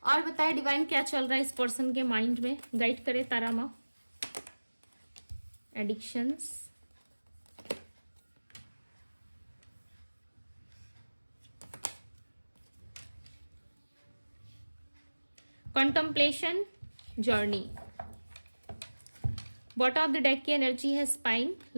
और बताए डिवाइन क्या चल रहा है इस पर्सन के माइंड में। गाइड करे तारा माँ। Addictions, contemplation, journey. Bottom of the deck की एनर्जी है स्पाइन,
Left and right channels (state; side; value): inverted; both; correlation -1.00